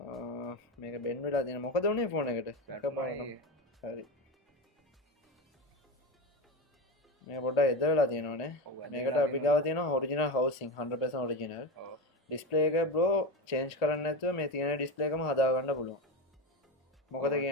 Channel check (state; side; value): normal; both; correlation 0.20